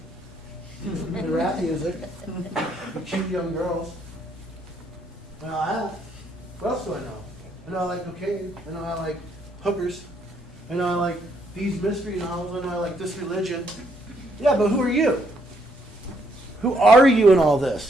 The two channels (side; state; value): both; normal; correlation 0.72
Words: And rap music. And cute young girls. What else do I know? I know I like cocaine. I know I like hookers. I know I like these mystery novels. I know I like this religion. Yeah, but who are you? Who are you in all